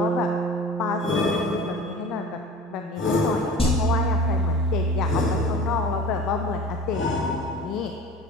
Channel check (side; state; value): both; normal; correlation 0.39